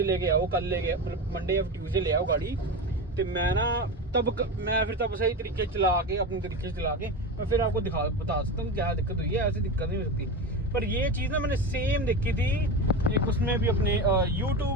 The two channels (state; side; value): normal; both; correlation 0.22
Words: लेके आओ, कल लेके मंडे या ट्यूसडे ले आओ गाड़ी। तो मैं ना मैं फिर तब सही तरीके चला के अपने तरीके से चला के मैं फिर आपको बता सकता हूँ क्या दिक्कत हुई है। ऐसी दिक्कत नहीं हो सकती। पर ये चीज़ ना मैंने सेम देखी थी एक उसमें भी अपने